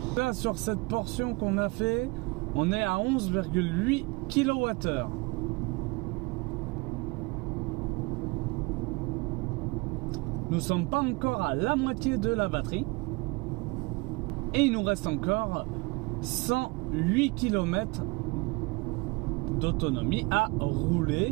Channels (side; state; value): left; quieter; 26.3 dB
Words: Là, sur cette portion qu'on a fait, on est à 11,8 kWh. nous ne sommes pas encore à la moitié de la batterie. Et il nous reste encore 108 km d'autonomie à